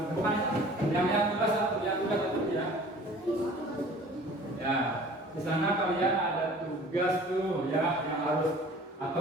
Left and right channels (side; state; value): both; normal; correlation 0.47